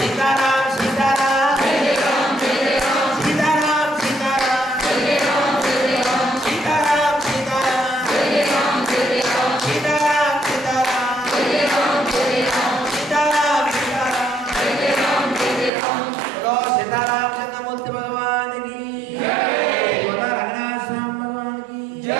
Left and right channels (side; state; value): left; drops out; at 15.7 s